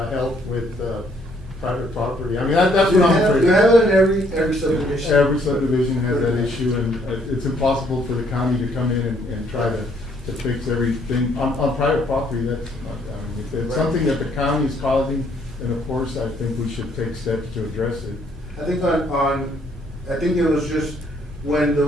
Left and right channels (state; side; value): normal; both; correlation 0.66